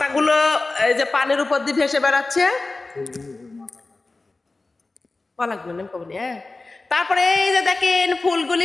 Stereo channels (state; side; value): quieter; right; 3.4 dB